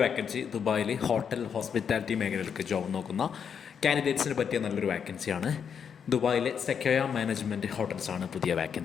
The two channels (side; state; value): right; quieter; 7.3 dB